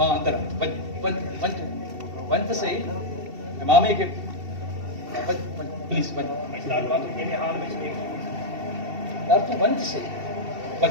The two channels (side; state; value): left; late; 2.7 ms